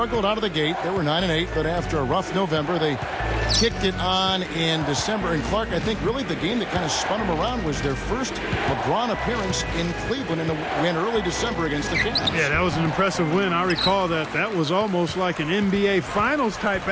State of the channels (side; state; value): both; identical; correlation 1.00